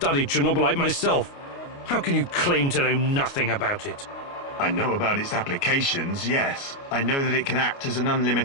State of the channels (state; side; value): late; right; 29 ms